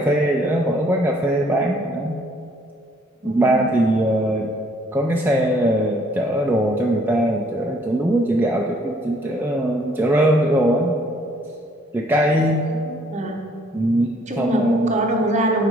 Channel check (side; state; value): both; normal; correlation 0.63